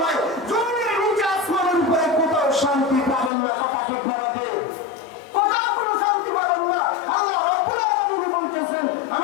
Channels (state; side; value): drops out; right; at 3.3 s